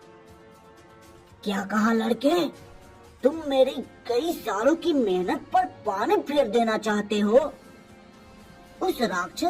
क्या कहा लड़के? तुम मेरी कई सालों की मेहनत पर पानी फेर देना चाहते हो? उस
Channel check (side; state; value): both; identical; correlation 1.00